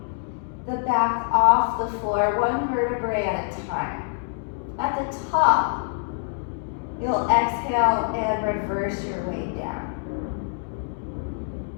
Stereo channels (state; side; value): silent; right; digital silence